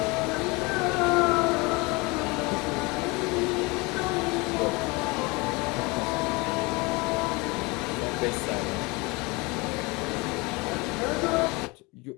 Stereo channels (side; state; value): right; quieter; 25.8 dB